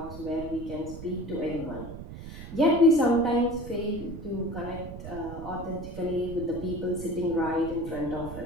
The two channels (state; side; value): noise; right; rumble, 11 dB below the sound